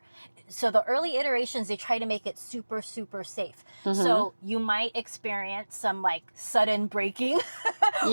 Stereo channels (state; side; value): inverted; both; correlation -1.00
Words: so the early iterations, they try to make it super, super safe. So you might experience some like sudden braking